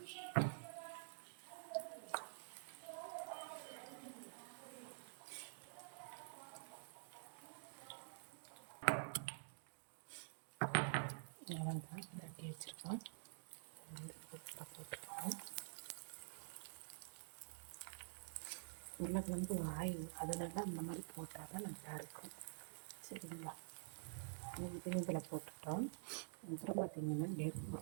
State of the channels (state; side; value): silent; left; digital silence